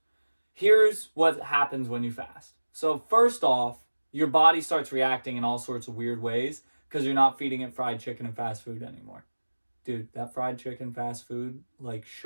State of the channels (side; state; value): both; inverted; correlation -1.00